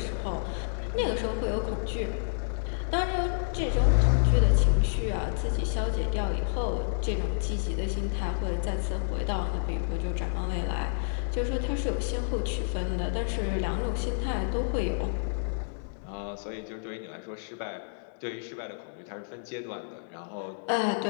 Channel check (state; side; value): silent; right; 58 dB below the other